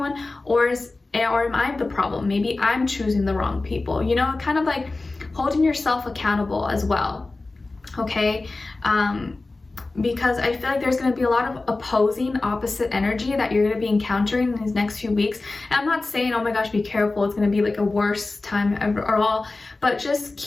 or am I the problem? Maybe I'm choosing the wrong people, you know, kind of like holding yourself accountable as well. Okay, because I feel like there's going to be a lot of opposing, opposite energy that you're going to be encountering in these next few weeks. And I'm not saying, oh my gosh, be careful, it's going to be like a worst time ever or all, but just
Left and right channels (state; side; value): quieter; right; 3.3 dB